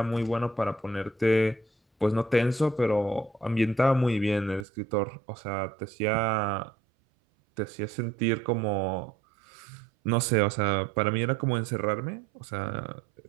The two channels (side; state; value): left; drops out; at 4.7 s